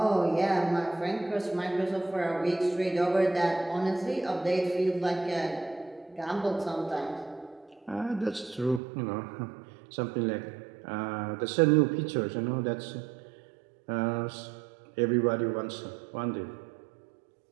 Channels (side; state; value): left; drops out; at 8.8 s